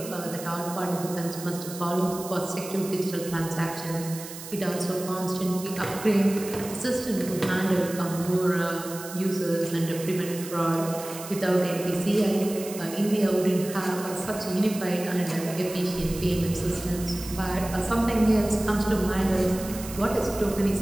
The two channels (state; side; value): noise; right; hiss, 12 dB below the sound